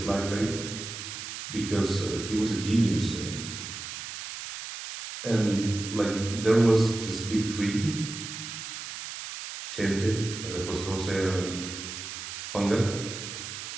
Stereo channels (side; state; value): right; noise; hiss, 8 dB below the sound